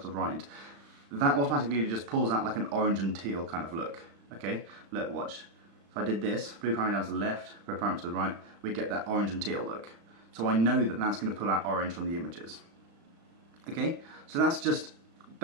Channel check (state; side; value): late; left; 35 ms